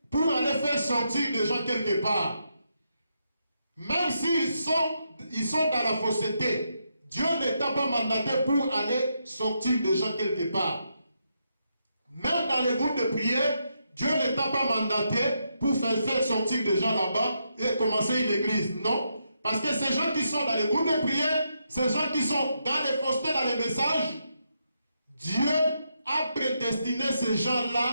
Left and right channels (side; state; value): both; inverted; correlation -0.81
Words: pour aller faire sortir les gens quelque part. Même s'ils sont dans la fausseté, Dieu ne t'a pas mandaté pour aller sortir des gens quelque part. Même dans les groupes de prière, Dieu ne t'a pas mandaté pour faire sortir des gens là-bas et commencer une église. Non. Parce que ces gens qui sont dans les groupes de prière, ces gens qui sont dans les faussetés, dans les messages, Dieu a prédestiné ces